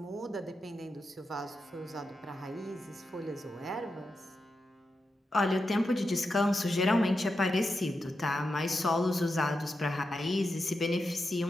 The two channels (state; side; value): normal; both; correlation 0.88